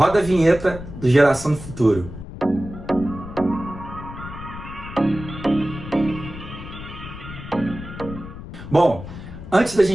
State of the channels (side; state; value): left; noise; rumble, 12 dB below the sound